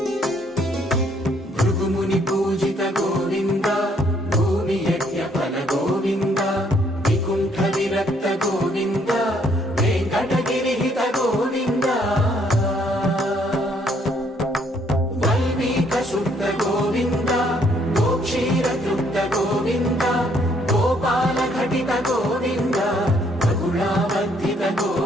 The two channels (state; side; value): normal; both; correlation 0.67